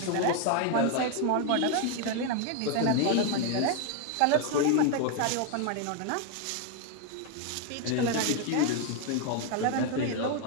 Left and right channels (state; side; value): different; both; correlation 0.01